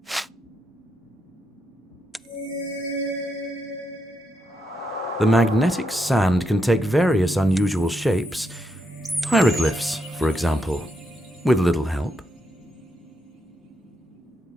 The magnetic sand can take various unusual shapes. Hieroglyphs, for example, with little help.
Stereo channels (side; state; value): both; normal; correlation 0.81